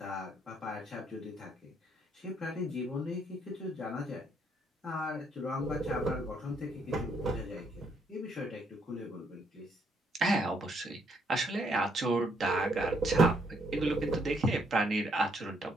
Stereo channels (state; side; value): normal; both; correlation 0.71